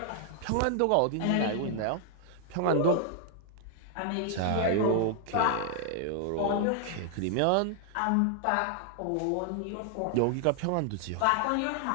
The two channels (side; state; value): both; different; correlation 0.00